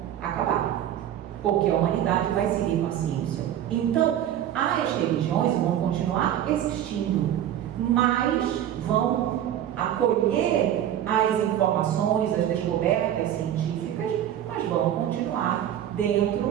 acabar. Porque a humanidade vai seguir com a ciência. Então, as religiões vão continuar existindo, mas vão acolher as informações, as descobertas científicas, mas vão continuar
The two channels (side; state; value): left; quieter; 11.0 dB